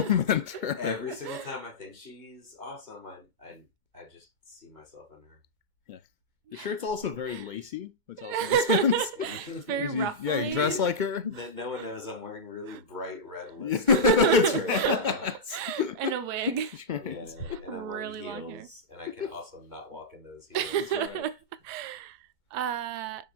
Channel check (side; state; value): left; late; 2.2 ms